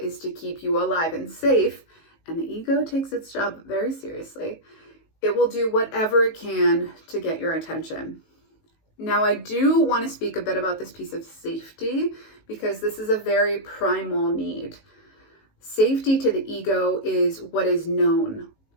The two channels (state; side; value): late; right; 19 ms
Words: to keep you alive and safe, and the ego takes its job very seriously, it will do whatever it can to get your attention. Now, I do want to speak a bit about this piece of safety, because this is a very primal need. Safety to the ego is what is known,